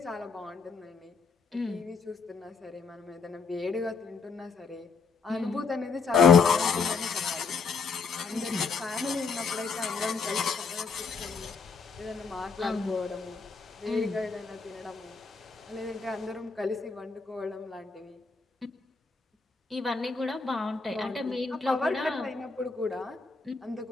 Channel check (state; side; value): quieter; right; 4.8 dB